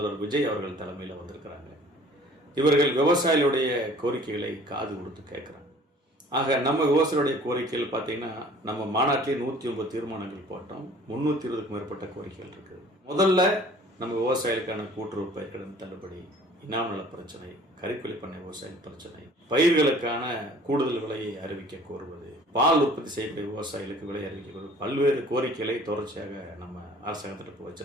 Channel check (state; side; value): normal; both; correlation 0.51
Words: விஜய் அவர்கள் தலைமையில் வந்திருக்கிறாங்க. இவர்கள் விவசாயிகளுடைய கோரிக்கைகளை காது கொடுத்து கேட்குறாங்க. ஆக நம்ம விவசாயிகளுடைய கோரிக்கைகள் பார்த்தீங்கன்னா, நம்ம மாநாட்டிலே 109 தீர்மானங்கள் போட்டோம். 320க்கும் மேற்பட்ட கோரிக்கைகள் இருக்குது. முதல்ல நம்ம விவசாயிகளுக்கான கூட்டுறவு பயிர்க்கடன் தள்ளுபடி, இனாம் நல பிரச்சனை, கறிக்கொல்லி பண்ணை விவசாயிகள் பிரச்சனை, பயிர்களுக்கான கூடுதல் விலையை அறிவிக்க கோருவது, பால் உற்பத்தி செய்யக்கூடிய விவசாயிகளுக்கு விலை அறிவிக்க கோருவது, பல்வேறு கோரிக்கைகளை தொடர்ச்சியாக நம்ம அரசாங்கத்திற்கு